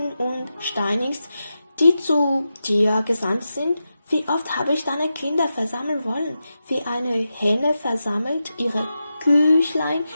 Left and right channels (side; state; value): both; inverted; correlation -0.90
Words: und steinigst, die zu dir gesandt sind, wie oft habe ich deine Kinder versammeln wollen, wie eine Hähne versammelt ihre Küchlein